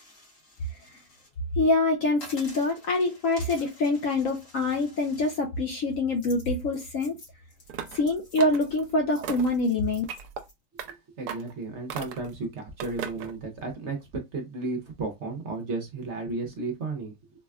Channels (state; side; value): normal; both; correlation 0.02